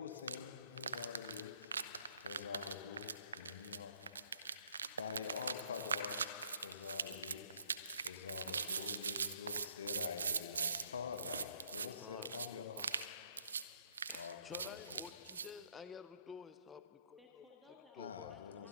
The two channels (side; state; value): both; inverted; correlation -0.66